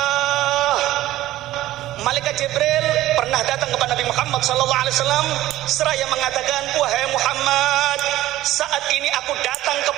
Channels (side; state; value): left; quieter; 15.1 dB